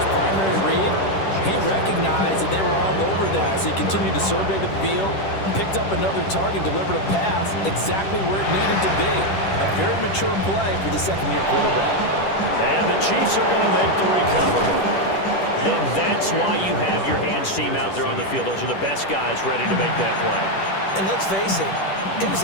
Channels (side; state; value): right; late; 10 ms